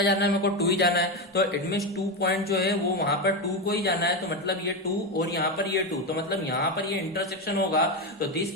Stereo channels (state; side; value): normal; both; correlation 0.13